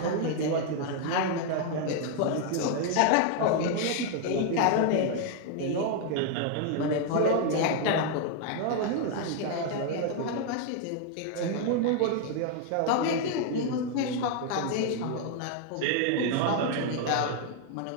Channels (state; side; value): different; both; correlation 0.00